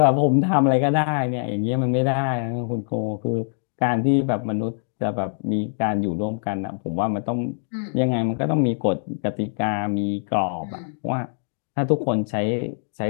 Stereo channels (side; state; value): right; silent; 63 dB below the other